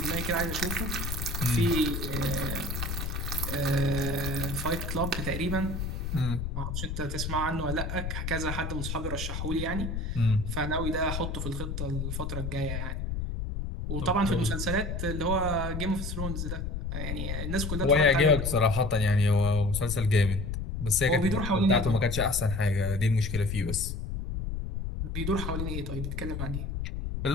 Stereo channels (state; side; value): noise; left; rumble, 3 dB below the sound